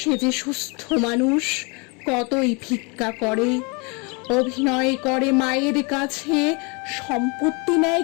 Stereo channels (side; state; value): right; quieter; 31.3 dB